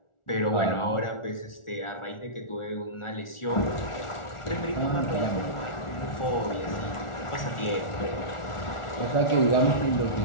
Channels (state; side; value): late; right; 1.4 ms